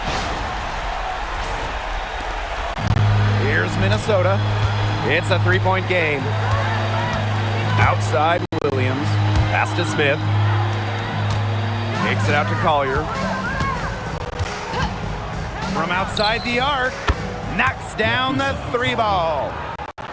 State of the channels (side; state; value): both; identical; correlation 1.00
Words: Here's Minnesota. It's a three-point game. Outside Williams. Pass to Smith. Takes it out to Collier. From outside the arc. Knocks down the 3 ball.